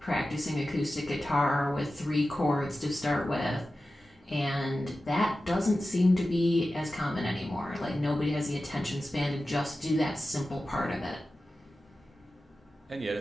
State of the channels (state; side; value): normal; both; correlation 0.94